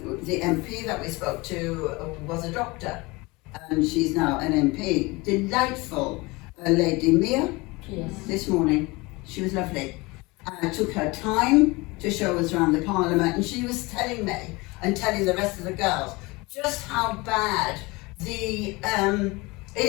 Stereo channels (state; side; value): quieter; right; 24.0 dB